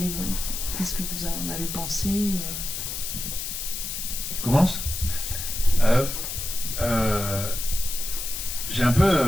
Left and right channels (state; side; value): noise; left; hiss, 5 dB below the sound